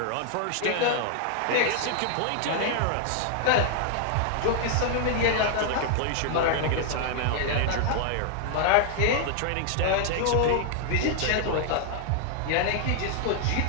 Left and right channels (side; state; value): both; different; correlation 0.00